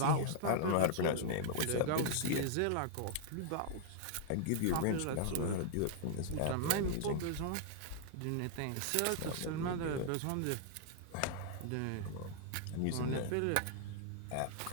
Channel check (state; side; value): different; both; correlation -0.01